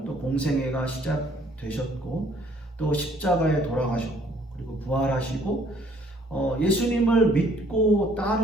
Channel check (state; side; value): normal; both; correlation 0.61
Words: 또 공생애가 시작되셨고 또 십자가에 돌아가셨고 그리고 부활하시고 예수님을 믿고